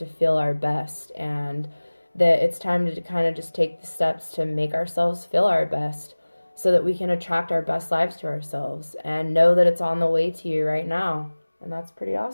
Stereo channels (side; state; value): both; inverted; correlation -1.00